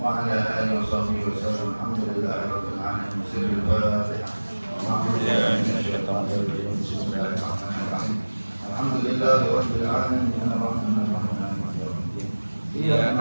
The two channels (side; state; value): both; inverted; correlation -1.00